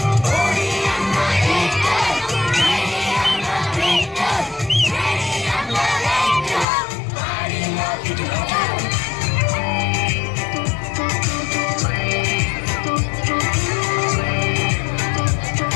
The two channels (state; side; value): drops out; right; at 6.7 s